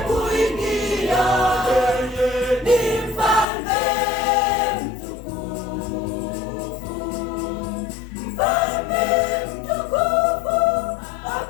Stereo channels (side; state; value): right; drops out; at 3.5 s